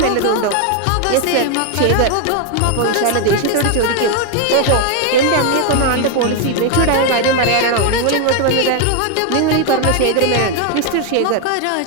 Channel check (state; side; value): different; both; correlation 0.01